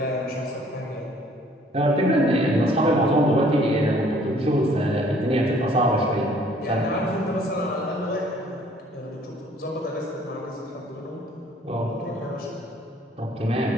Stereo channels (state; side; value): normal; both; correlation 0.58